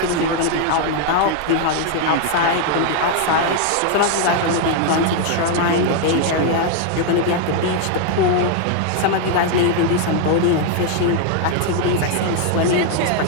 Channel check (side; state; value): both; different; correlation 0.00